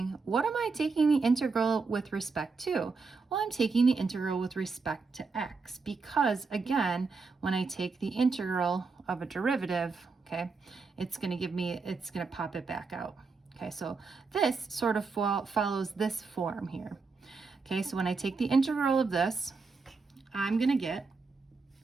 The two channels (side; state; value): left; quieter; 4.5 dB